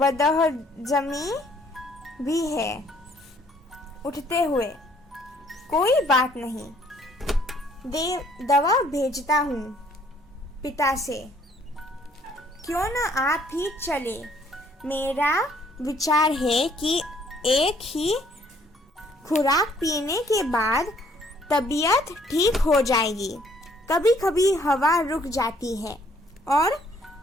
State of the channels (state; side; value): normal; both; correlation 0.63